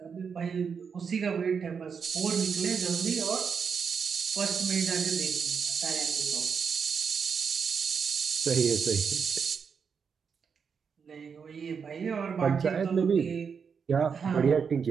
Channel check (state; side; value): quieter; left; 6.2 dB